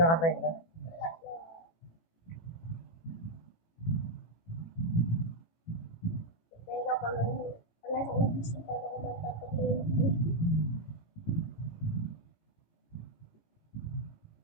na. Wala na. Kaya kapag ano, wala sa ubus ang paano ko magtataglin.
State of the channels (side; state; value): right; late; 18 ms